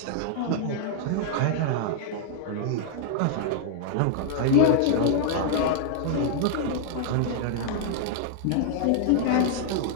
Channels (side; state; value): both; different; correlation -0.01